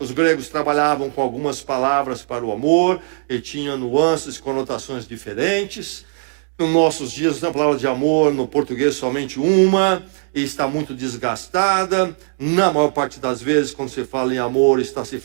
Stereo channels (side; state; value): left; silent; 65 dB below the other